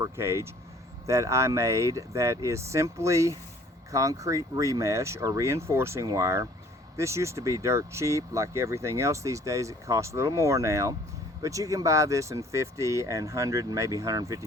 cage that I made that is simply concrete remesh or reinforcing wire. This used to be dirt cheap. Like everything else these days, it costs a little more now. But you can buy this in 50 and 100 and maybe 150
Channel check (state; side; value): normal; both; correlation 0.55